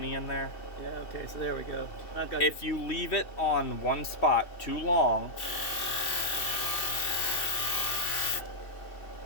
in there? Yeah. Okay. So there we go. I've got. If you leave it on one spot too long,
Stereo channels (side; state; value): right; late; 2.6 ms